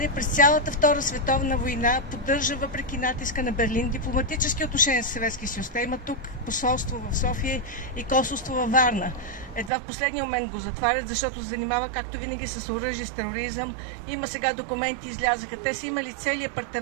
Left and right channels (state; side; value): drops out; left; at 9.7 s